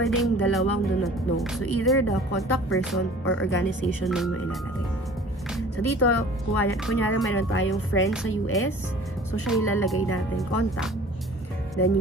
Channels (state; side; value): normal; both; correlation 0.47